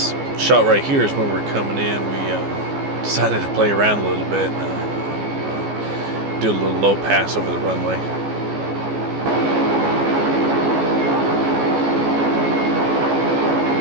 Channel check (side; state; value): left; late; 14 ms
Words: shot right here is when we're coming in. We decided to play around a little bit, do a little low pass over the runway.